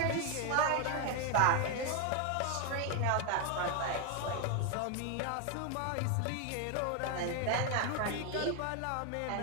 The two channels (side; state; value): both; different; correlation 0.01